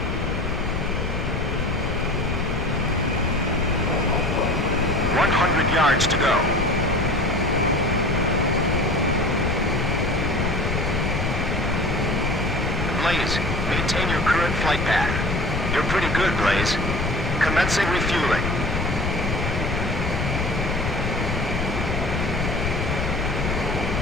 100 yards to go. Blaze, maintain your current flight path. You're pretty good, Blaze. Commencing refueling.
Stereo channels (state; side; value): noise; left; rumble, 2 dB below the sound